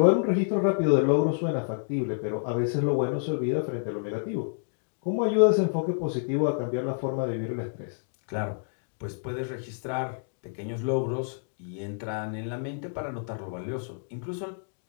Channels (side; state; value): right; silent; digital silence